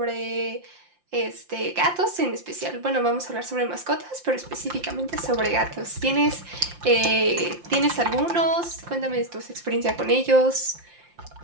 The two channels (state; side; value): late; left; 5.7 ms